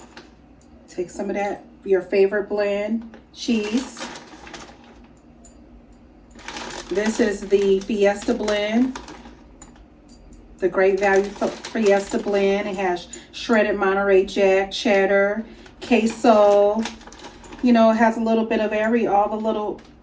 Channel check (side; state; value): both; identical; correlation 1.00